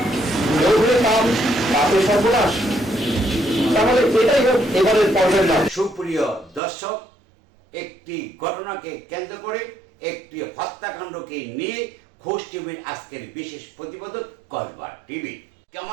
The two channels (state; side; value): drops out; left; at 6.6 s